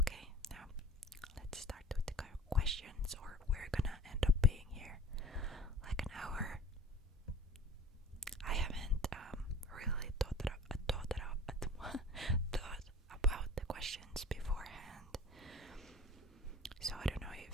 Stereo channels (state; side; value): normal; both; correlation 0.44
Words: now let's start with the questions, or we're gonna end up being here like an hour. I haven't really thought about the questions beforehand, so I don't know